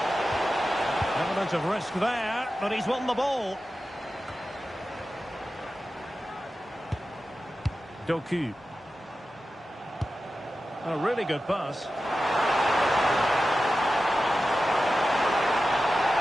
Element of risk there, but he's won the ball. Doku. A really good pass.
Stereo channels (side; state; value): both; normal; correlation 0.93